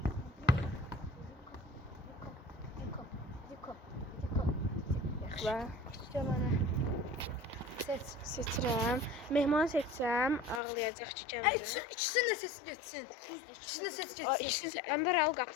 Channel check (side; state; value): right; drops out; at 10.6 s